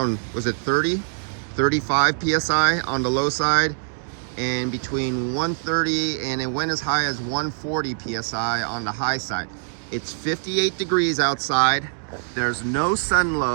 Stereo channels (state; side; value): silent; left; digital silence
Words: was it 35 psi on the low side, and between 130 and it went as high as 140 psi on the high side. It's 58 degrees outside, there's no sun